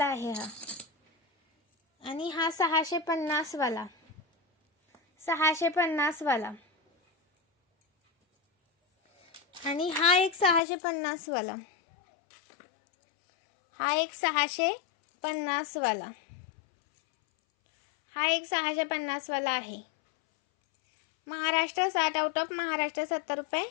आहे हा. आणि हा 650 वाला 650 वाला. आणि हा एक 650 वाला. हा एक 650 वाला. हा एक 650 वाला आहे. महाराष्ट्र 60 आउट ऑफ महाराष्ट्र 70 रुपये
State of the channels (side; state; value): right; drops out; at 10.6 s